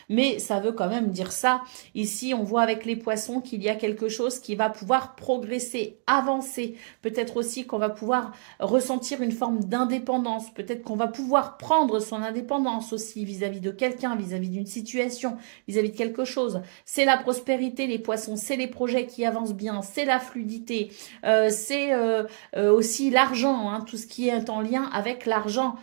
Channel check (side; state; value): left; silent; 60 dB below the other